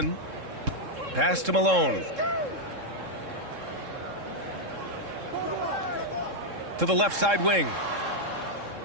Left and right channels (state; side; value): late; left; 3.7 ms